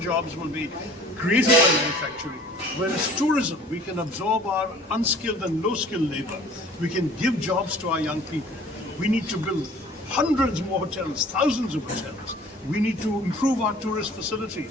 will be created by manufacturing. Whereas tourism, we can absorb our unskilled and low-skilled labor. We can give jobs to our young people. We need to build hundreds more hotels, thousands of hotels. We need to improve our tourist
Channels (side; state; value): both; normal; correlation 0.49